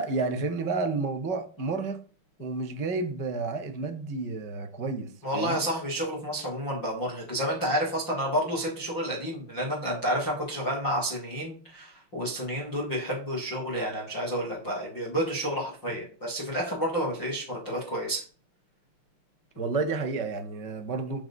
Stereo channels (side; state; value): right; late; 5.7 ms